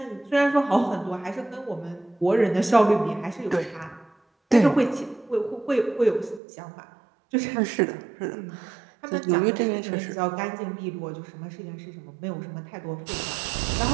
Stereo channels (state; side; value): drops out; left; at 6.4 s